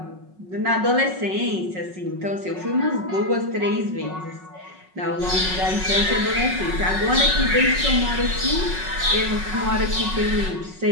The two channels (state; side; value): late; left; 5.4 ms